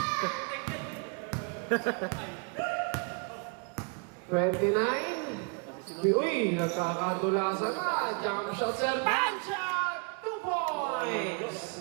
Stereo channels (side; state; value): left; quieter; 36.1 dB